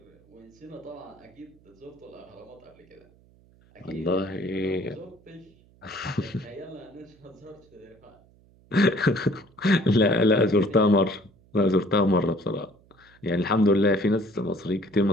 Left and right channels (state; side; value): noise; right; hum, 29 dB below the sound